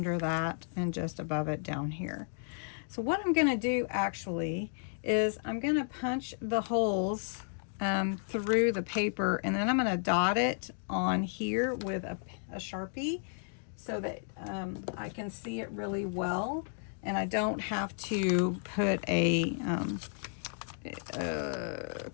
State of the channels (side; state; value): right; silent; digital silence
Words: that and just above it down here. So what I'm going to do actually is I'm going to punch the holes through the paper, and then I'm going to dot it on here with a Sharpie so that I can see it really well, and I don't have to put a